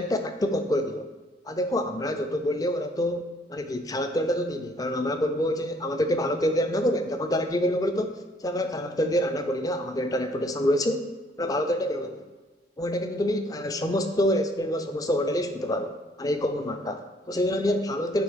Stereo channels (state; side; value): normal; both; correlation 0.62